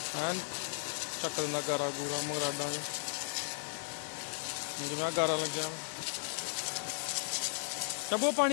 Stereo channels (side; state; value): right; silent; 54 dB below the other